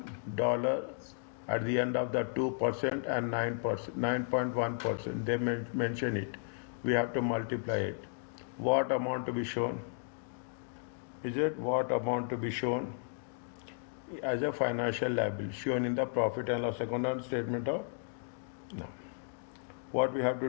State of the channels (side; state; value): right; silent; digital silence